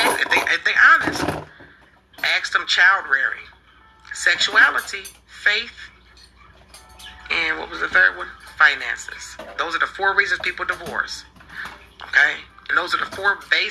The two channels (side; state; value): both; identical; correlation 1.00